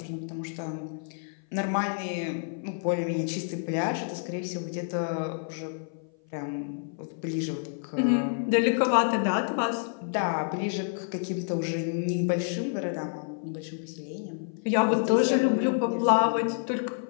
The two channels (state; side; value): silent; right; 56 dB below the other